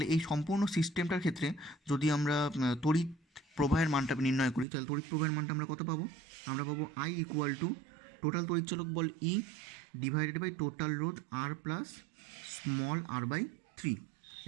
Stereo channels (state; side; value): drops out; left; at 4.7 s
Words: এই সম্পূর্ণ সিস্টেমটার ক্ষেত্রে যদি আমরা তড়িৎ প্রবাহের মানটা নির্ণয় করি, তাহলে তড়িৎ প্রবাহের মানটা আমরা কত পাবো, আমরা পাবো আই ইকুয়াল টু টোটাল তড়িৎচালক বল ই ডিভাইডেড বাই টোটাল রোধ আর প্লাস স্মল r/3,